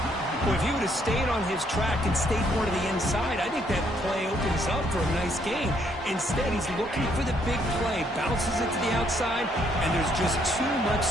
Well, if he would have stayed on his track and stayed more to the inside, I think that play opens up for a nice game. Instead, he's looking for the big play, bounces it to the outside, and there's just too much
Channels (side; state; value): both; normal; correlation 0.70